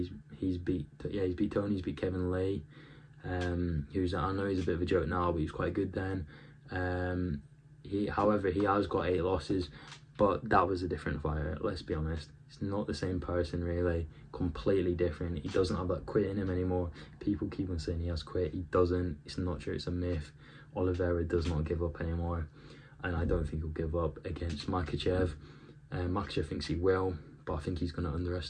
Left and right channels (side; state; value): both; identical; correlation 1.00